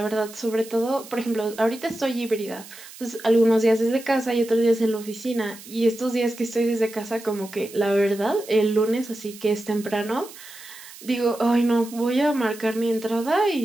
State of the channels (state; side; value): noise; right; hiss, 17 dB below the sound